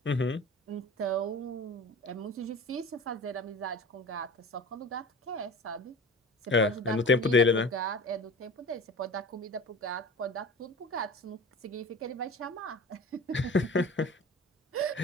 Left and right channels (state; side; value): normal; both; correlation 0.37